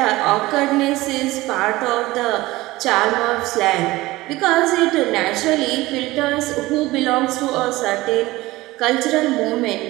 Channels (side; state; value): left; quieter; 18.9 dB